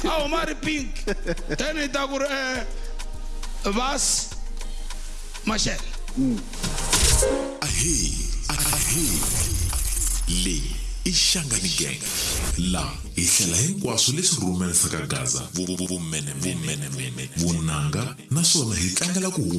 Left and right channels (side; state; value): both; identical; correlation 1.00